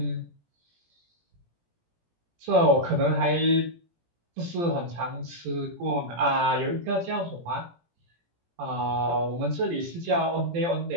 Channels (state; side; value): late; left; 17 ms